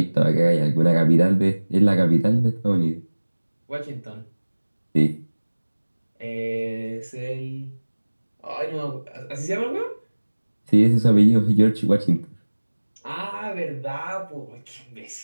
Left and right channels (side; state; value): both; inverted; correlation -1.00